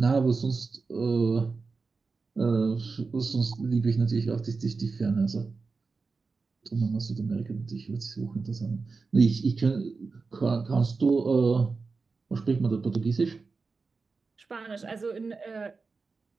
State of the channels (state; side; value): quieter; left; 4.3 dB